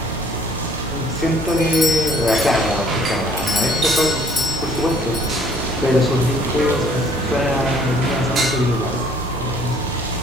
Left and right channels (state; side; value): normal; both; correlation 0.58